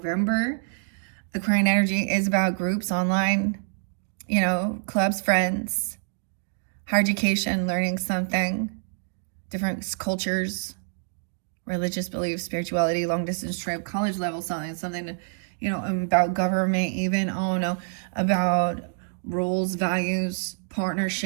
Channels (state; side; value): silent; left; 61 dB below the other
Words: Aquarian energy is about groups online, you know, clubs, friends. Higher education, learning something, different cultures, religious beliefs, spirituality, long distance trip, college level something, you know, about government even, I don't know, about rules, values,